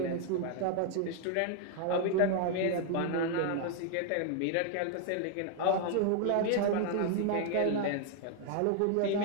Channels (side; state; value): both; different; correlation 0.00